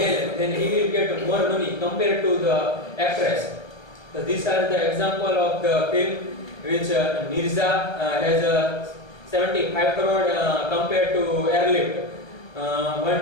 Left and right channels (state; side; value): late; right; 1.2 ms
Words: then he will get more money compared to the actress. So these are the example of the film which Mirza has 75 crore compared to Airlift